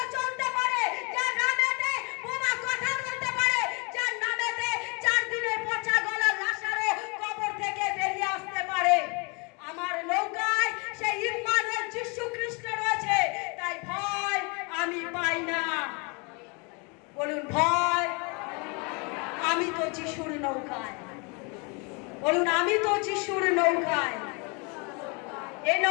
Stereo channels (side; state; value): right; quieter; 31.7 dB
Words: চলতে পারে, যার নামেতে বোমা কথা বলতে পারে, যার নামেতে 4 দিনের পচা গলা লাশারও কবর থেকে বেরিয়ে আসতে পারে। আমার নৌকায় সেই ইম্মানুয়েল যিশু খ্রিস্ট রয়েছে, তাই ভয় আমি পাই না। বলুন, ভয় আমি তো যিশুর নৌকায়। বলুন, আমি তো যিশুর নৌকায়। এই